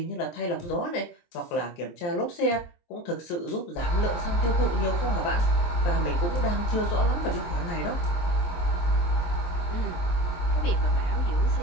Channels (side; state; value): right; late; 23 ms